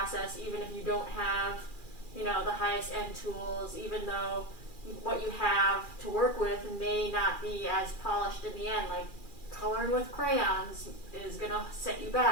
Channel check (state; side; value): late; right; 2.4 ms